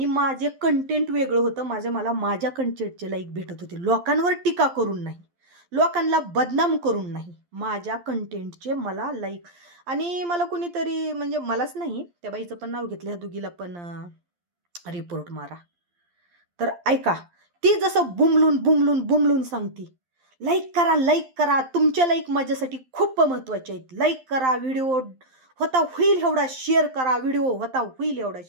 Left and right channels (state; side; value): late; left; 12 ms